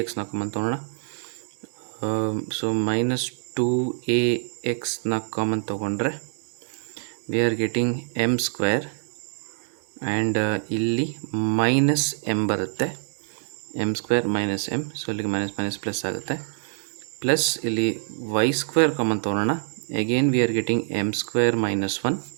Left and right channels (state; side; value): silent; left; digital silence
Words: ಕಾಮನ್ ತೊಗೊಳ್ಳೋಣ. ಸೊ ಮೈನಸ್ 2ax ಕಾಮನ್ ತೊಗೊಂಡ್ರೆ we are getting M square and ಇಲ್ಲಿ ಮೈನಸ್ ಎಮ್ ಬರುತ್ತೆ, M square minus M. So ಇಲ್ಲಿಗೆ ಮೈನಸ್ ಮೈನಸ್ ಪ್ಲಸ್ ಆಗುತ್ತೆ. ಪ್ಲಸ್ ಇಲ್ಲಿ ವೈ ಸ್ಕ್ವೇರ್ ಕಾಮನ್ ತೊಗೊಳ್ಳೋಣ. Again we are getting M square minus 1